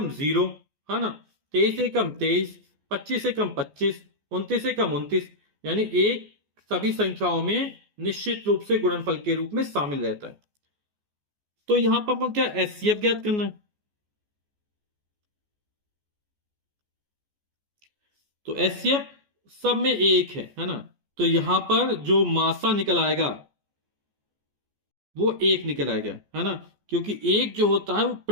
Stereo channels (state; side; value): late; left; 14 ms